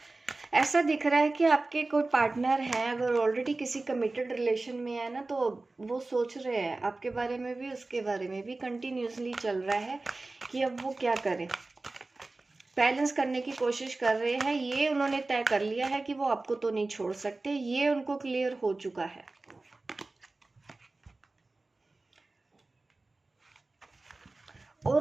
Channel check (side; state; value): left; quieter; 3.2 dB